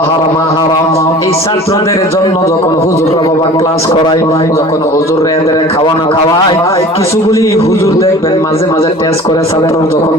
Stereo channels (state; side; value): normal; both; correlation 0.43